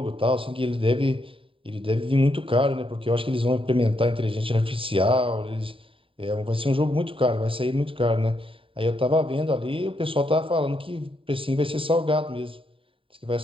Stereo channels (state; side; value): late; left; 0.26 ms